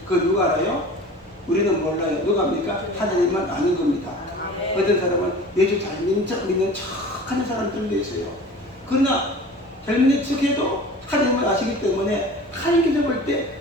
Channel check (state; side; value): normal; both; correlation 0.40